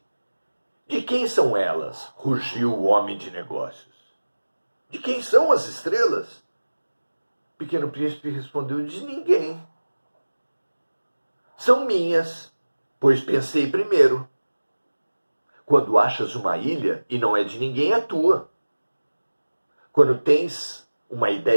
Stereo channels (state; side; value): inverted; both; correlation -1.00